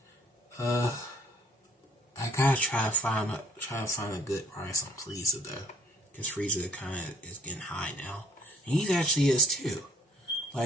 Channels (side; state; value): both; normal; correlation 0.61